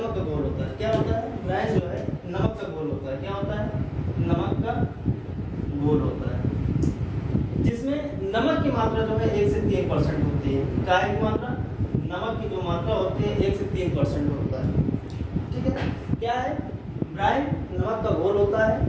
का घोल होता है। क्या होता है? ब्राइन जो है नमक का घोल होता है। क्या होता है? नमक का घोल होता है, जिसमें नमक की मात्रा जो है 1 से 3% होती है। क्या की मात्रा? नमक की जो मात्रा होती है 1 से 3% होता है। ठीक है, क्या है? ब्राइन नमक का घोल होता है,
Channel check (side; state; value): both; identical; correlation 1.00